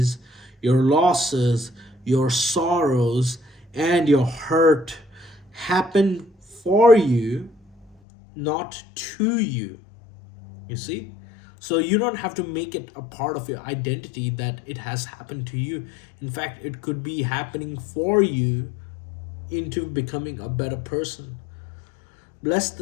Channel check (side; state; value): right; drops out; at 8.0 s